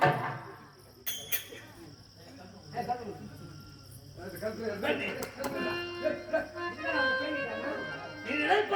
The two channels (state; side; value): identical; both; correlation 1.00